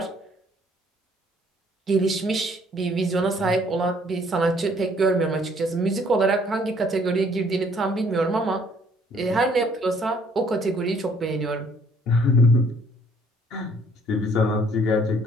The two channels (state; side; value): normal; both; correlation 0.62